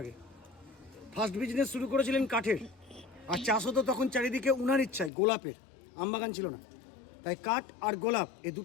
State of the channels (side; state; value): right; drops out; at 5.1 s